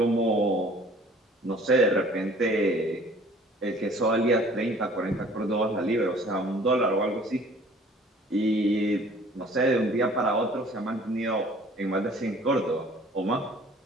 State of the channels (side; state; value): both; normal; correlation 0.52